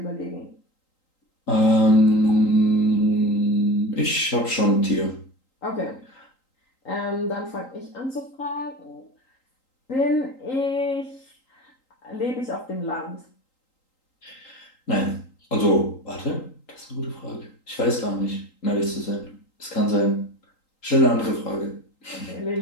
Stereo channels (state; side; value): late; right; 3.8 ms